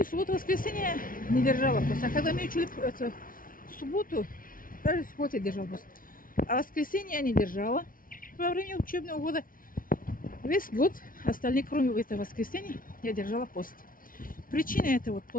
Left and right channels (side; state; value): right; late; 0.40 ms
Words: в субботу, воскресенье, не держала пост. А когда мы учили в субботу, даже в субботу я держала пост. А воскресенье я не держала во время учебного года. Весь год, остальные, кроме этого воскресенья, я держала пост. Причина это